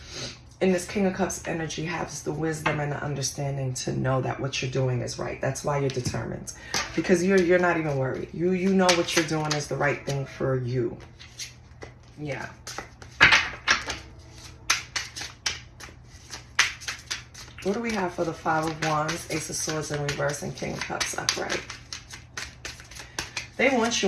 in this King of Cups energy, has the wisdom and the understanding to know that what you're doing is right. That's why you're determined. Because you're not even worried. You know what you're doing is the right thing for you. Yeah. What do we have for the Five of Wands, Ace of Swords in reverse, and King of Cups upright? They want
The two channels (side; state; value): both; identical; correlation 1.00